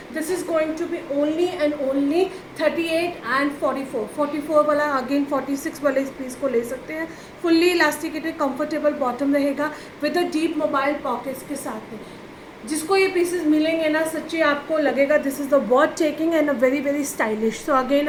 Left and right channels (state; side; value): identical; both; correlation 1.00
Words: This is going to be only and only 38 and 44 वाला अगेन 46 वाले इस पीस को ले सकते हैं। फुल्ली इलास्टिकेटेड कंफर्टेबल बॉटम रहेगा with a deep mobile pockets के साथ में। जिसको ये पीसेस मिलेंगे ना, सच्ची आपको लगेगा this is the worth taking and a very stylish. So again